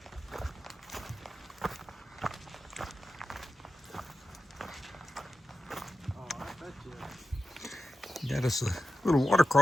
Got us a little water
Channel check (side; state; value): both; normal; correlation 0.91